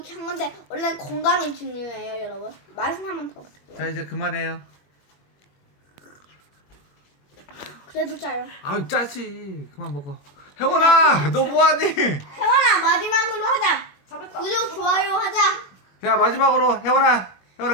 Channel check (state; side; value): late; right; 21 ms